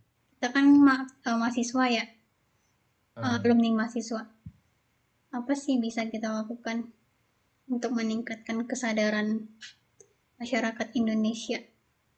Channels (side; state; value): both; identical; correlation 1.00